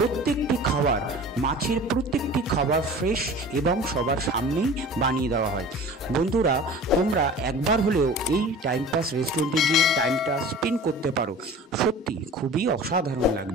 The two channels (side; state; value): both; normal; correlation 0.40